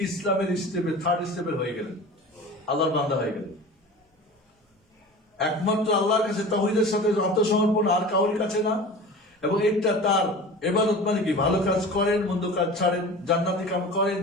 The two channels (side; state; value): both; normal; correlation 0.36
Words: ইসলামের স্টেপে, থার্ড স্টেপের হয়ে গেলেন, আল্লাহর বান্দা হয়ে গেলেন। একমাত্র আল্লাহর কাছে তাওহীদের সাথে আত্মসমর্পণ, আর কাউর কাছে না। এবং এটা তার ইবাদত মানে কি? ভালো কাজ করেন, মন্দ কাজ ছাড়েন, জান্নাতি কাজ করেন,